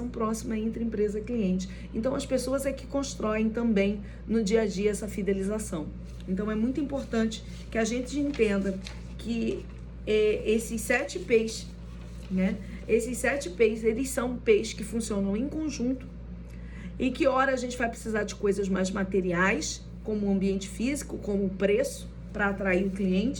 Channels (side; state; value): both; identical; correlation 1.00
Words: próxima entre empresa e cliente. Então as pessoas é que constroem também no dia a dia essa fidelização. Então é muito importante que a gente entenda que esses 7 P's, né? Esses 7 P's, eles são P's que funcionam em conjunto e que ora a gente vai precisar de coisas mais materiais, como o ambiente físico, como o preço, para atrair o